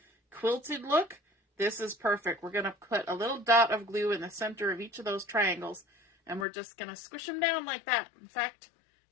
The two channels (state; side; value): drops out; right; at 6.5 s